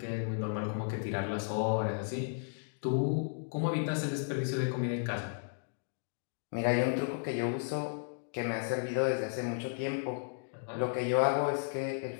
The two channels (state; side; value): silent; right; digital silence